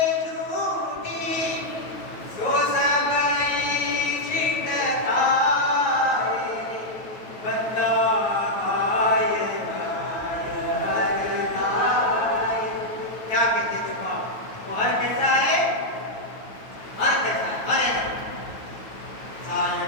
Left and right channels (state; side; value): late; right; 9.2 ms